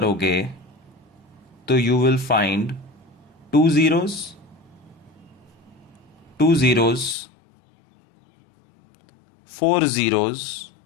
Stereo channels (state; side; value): drops out; right; at 7.2 s